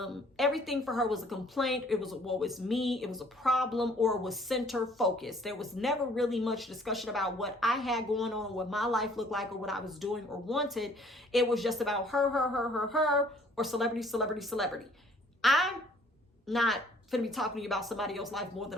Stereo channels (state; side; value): normal; both; correlation 0.58